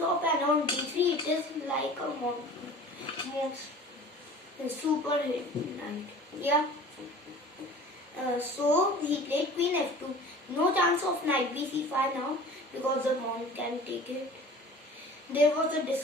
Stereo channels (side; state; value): both; normal; correlation 0.42